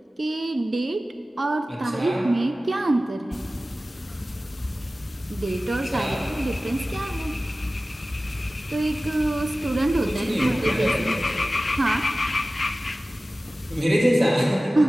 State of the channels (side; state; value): both; normal; correlation 0.96